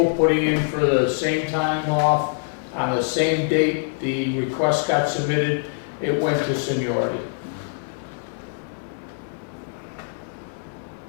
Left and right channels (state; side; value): silent; right; 59 dB below the other